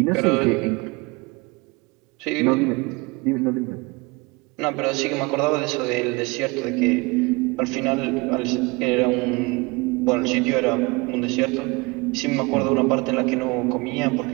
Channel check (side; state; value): left; quieter; 25.9 dB